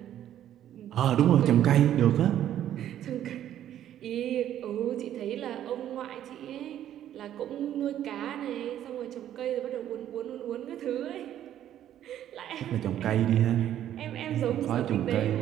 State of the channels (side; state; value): left; quieter; 11.3 dB